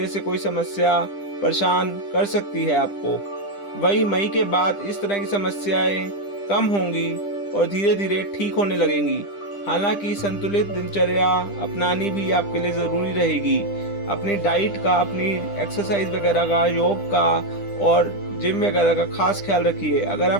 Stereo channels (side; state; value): right; late; 10 ms